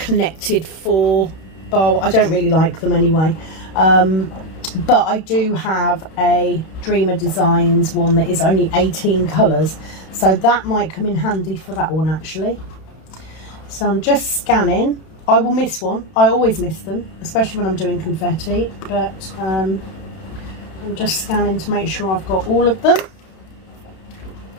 4 bar. I don't really like them anyway. But I do have a Dreamer Designs one that is only 18 colours. So that might come in handy for that one actually. So I'm just scanning. I will miss one. I always miss them, especially when I'm doing confetti. But I'm just scanning to make sure I've got all of them.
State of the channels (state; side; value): late; right; 32 ms